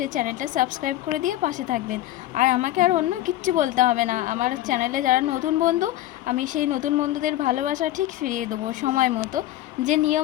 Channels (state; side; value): quieter; right; 14.6 dB